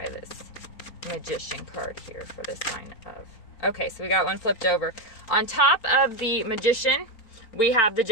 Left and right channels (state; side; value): late; right; 4.4 ms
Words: this Magician card here for the sign of... Okay, so we got one flipped over. On top of the Magician, we have the